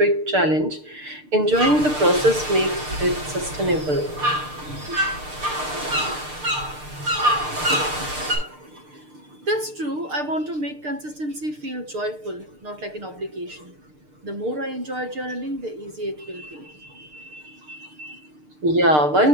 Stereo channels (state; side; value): late; left; 6.7 ms